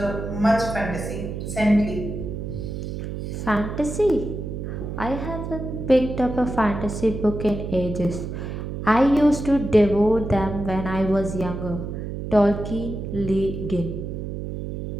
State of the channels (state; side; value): noise; right; hum, 6 dB below the sound